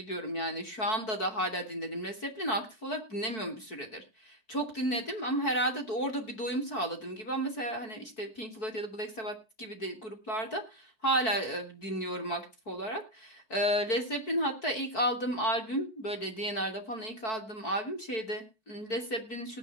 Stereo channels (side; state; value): right; late; 4.6 ms